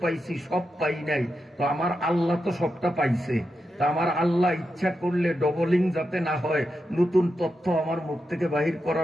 পাইছি, সব পাই নাই। তো আমার আল্লাহ তো সবটা পাইছে। তা আমার আল্লাহ ইচ্ছা করলে ডবলিং যাতে না হয়, নতুন তথ্য আমার মুখ থেকে বাহির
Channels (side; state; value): both; normal; correlation 0.87